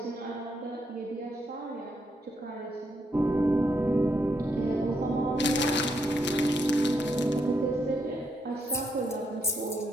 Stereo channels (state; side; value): normal; both; correlation 0.78